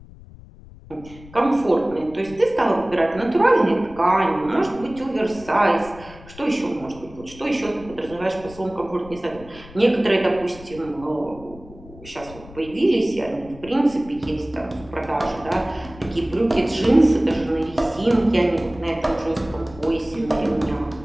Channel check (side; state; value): left; noise; rumble, 19 dB below the sound